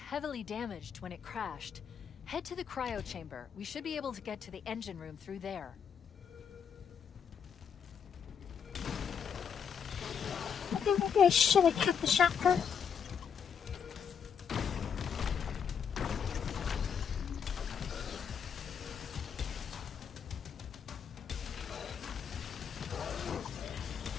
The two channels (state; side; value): quieter; right; 7.3 dB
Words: damaged when it crashed. Head to the cryo chamber. We should be able to get to the engine room through there. I think maybe I should have kept the shotgun.